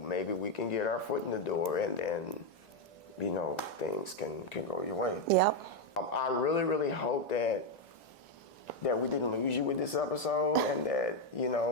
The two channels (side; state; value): both; normal; correlation 0.05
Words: we can get our foot in the door, and then things can go your way. Yep. I really, really hope that we didn't lose you with this episode, and that